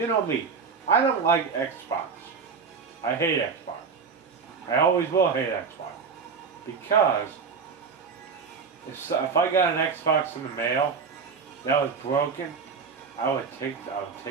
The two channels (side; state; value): left; quieter; 5.5 dB